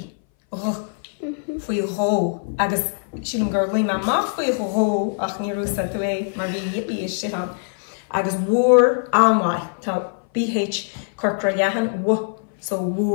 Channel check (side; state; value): right; silent; 60 dB below the other